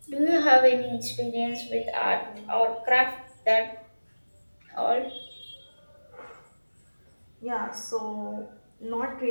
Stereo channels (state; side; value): inverted; both; correlation -1.00